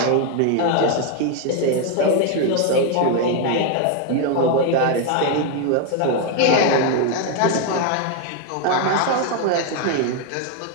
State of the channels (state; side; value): different; both; correlation 0.01